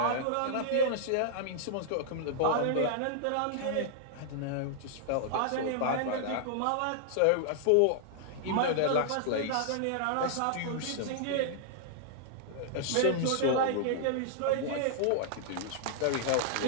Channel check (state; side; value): different; both; correlation -0.01